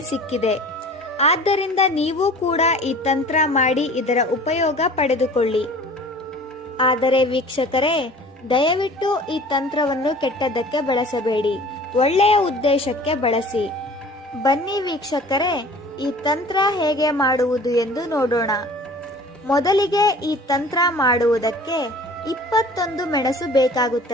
ಸಿಕ್ಕಿದೆ. ಆದ್ದರಿಂದ ನೀವು ಕೂಡ ಈ ತಂತ್ರ ಮಾಡಿ ಇದರ ಉಪಯೋಗ ಪಡೆದುಕೊಳ್ಳಿ. ಆದರೆ ವೀಕ್ಷಕರೇ, ದಯವಿಟ್ಟು ಈ ತಂತ್ರವನ್ನು ಕೆಟ್ಟದ್ದಕ್ಕೆ ಬಳಸಬೇಡಿ, ಒಳ್ಳೆಯ ಉದ್ದೇಶಕ್ಕೆ ಬಳಸಿ. ಬನ್ನಿ ವೀಕ್ಷಕರೇ, ಈ ತಂತ್ರ ಹೇಗೆ ಮಾಡುವುದು ಎಂದು ನೋಡೋಣ. ಮೊದಲಿಗೆ ಈ ತಂತ್ರ ಮಾಡುವುದಕ್ಕೆ 21 ಮೆಣಸು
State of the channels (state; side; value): normal; both; correlation 0.45